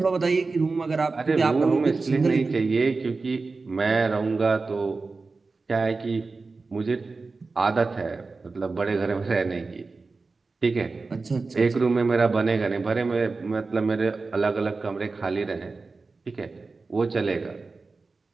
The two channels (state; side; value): quieter; left; 3.9 dB